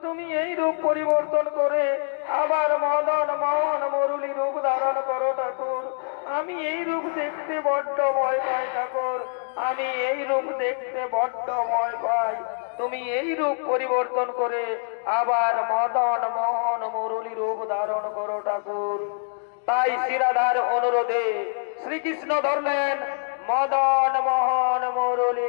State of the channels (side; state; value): right; silent; 62 dB below the other